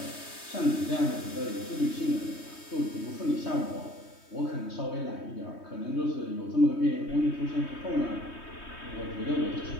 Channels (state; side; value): late; right; 3.2 ms